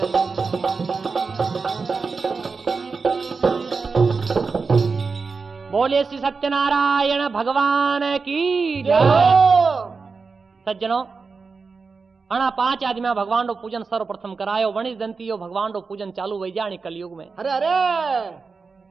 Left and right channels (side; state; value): left; quieter; 4.7 dB